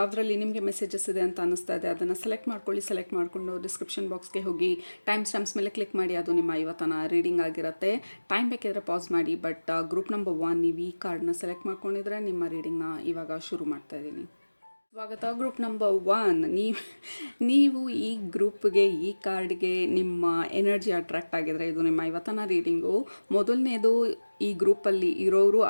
ನಿಮಗೆ ಮೆಸೇಜಸ್ ಇದೆ ಅಂತ ಅನ್ನಿಸ್ತಾ ಇದೆ ಅದನ್ನು ಸೆಲೆಕ್ಟ್ ಮಾಡ್ಕೊಳ್ಳಿ. ಸೆಲೆಕ್ಟ್ ಮಾಡಿಕೊಂಡು ಡಿಸ್ಕ್ರಿಪ್ಷನ್ ಬಾಕ್ಸ್ಗೆ ಹೋಗಿ ಟೈಮ್ ಸ್ಟ್ಯಾಂಪ್ಸ್ ಮೇಲೆ ಕ್ಲಿಕ್ ಮಾಡಿ. ಅದು ನಿಮ್ಮ ಇವತ್ತಿನ ರೀಡಿಂಗ್ ಆಗಿರುತ್ತೆ. ಟೈಮ್ ಬೇಕಿದ್ರೆ ಪಾಸ್ ಮಾಡಿ. ಬಟ್ ಗ್ರೂಪ್ ನಂಬರ್ 1 ನೀವು ಈ ಕಾರ್ಡ್ನ ಸೆಲೆಕ್ಟ್ ಮಾಡ್ಕೊಂಡಿದ್ರೆ ನಿಮ್ಮ ರೀಡಿಂಗ್ನ ಇವಾಗ ಶುರು ಮಾಡ್ತಾ ಇದ್ದೀನಿ. ಸ್ವಾಗತ. ಗ್ರೂಪ್ ನಂಬರ್ 1, ನೀವು ಈ ಗ್ರೂಪ್ಗೆ, ಈ ಕಾರ್ಡ್ಗೆ ನಿಮ್ಮ ಎನರ್ಜಿ ಅಟ್ರಾಕ್ಟ್ ಆಗಿದ್ರೆ ಇದು ನಿಮ್ಮ ಇವತ್ತಿನ ರೀಡಿಂಗು. ಮೊದಲನೇದು, ಈ ಗ್ರೂಪಲ್ಲಿ ಇರೋರು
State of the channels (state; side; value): inverted; both; correlation -1.00